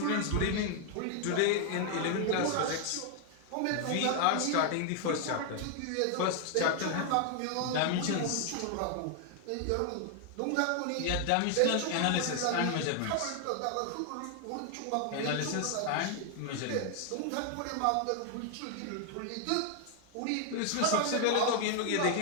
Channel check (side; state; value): both; different; correlation 0.00